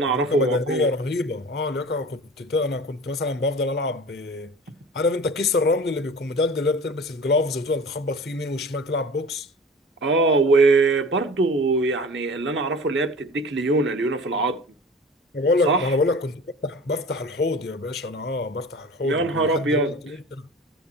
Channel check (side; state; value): both; normal; correlation 0.39